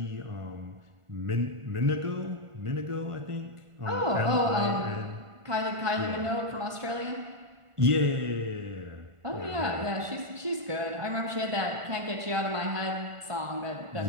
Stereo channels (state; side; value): late; left; 1.5 ms